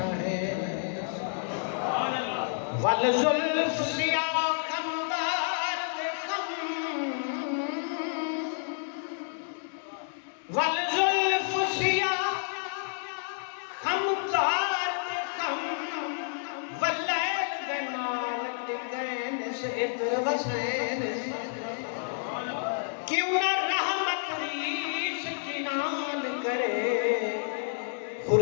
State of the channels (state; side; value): silent; right; digital silence